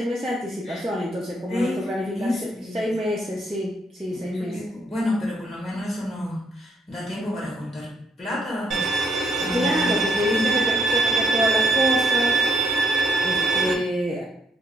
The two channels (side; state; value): both; normal; correlation 0.71